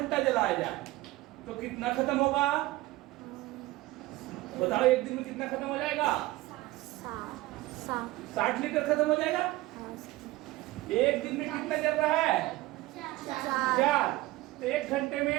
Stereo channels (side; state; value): left; quieter; 18.5 dB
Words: जलाया जाए तो कितना खत्म होगा? बताओ, एक दिन में कितना खत्म हो जाएगा? 60 लीटर खत्म हो जाएगा। एक दिन में कितना जल रहा है? 4। तो 1 घंटे